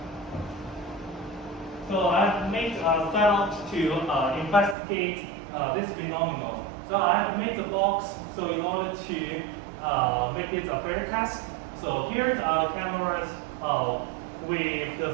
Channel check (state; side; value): drops out; left; at 4.8 s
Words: so I've made a setup to investigate this phenomenon. So I've made the box so in order to make it a fair test. So here are the cameras with